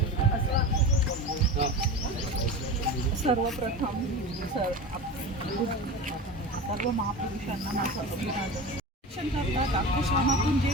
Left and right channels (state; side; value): normal; both; correlation 0.29